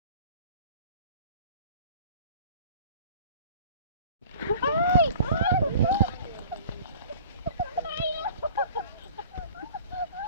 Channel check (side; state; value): both; inverted; correlation -0.45